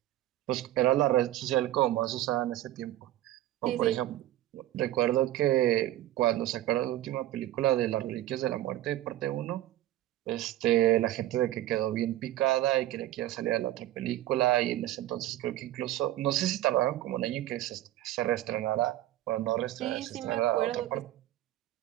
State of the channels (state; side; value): quieter; left; 14.4 dB